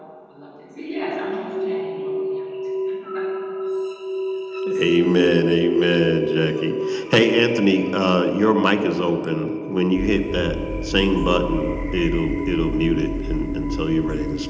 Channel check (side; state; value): both; identical; correlation 1.00